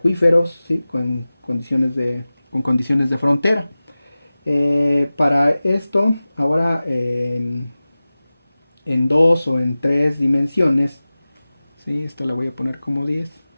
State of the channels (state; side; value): inverted; both; correlation -0.97